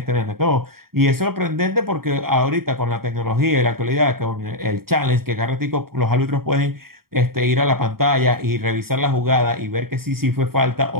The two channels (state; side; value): late; left; 0.93 ms